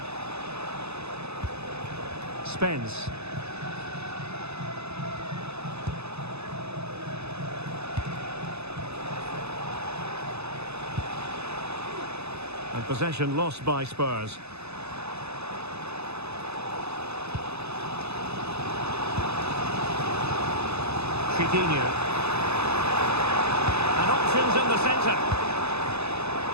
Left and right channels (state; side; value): late; left; 0.80 ms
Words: Spence. And possession lost by Spurs. Chiquinho. And options in the centre.